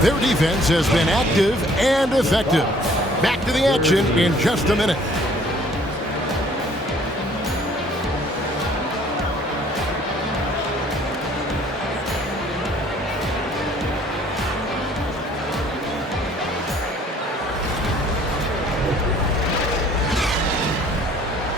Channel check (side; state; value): both; normal; correlation 0.57